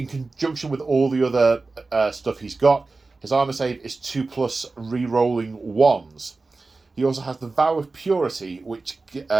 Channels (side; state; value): left; quieter; 3.7 dB